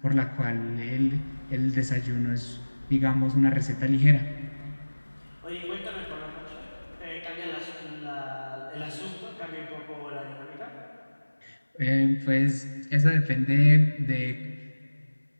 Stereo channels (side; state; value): both; inverted; correlation -1.00